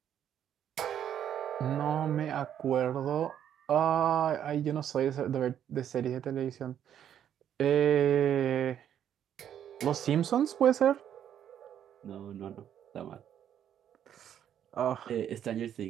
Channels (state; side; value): quieter; left; 9.8 dB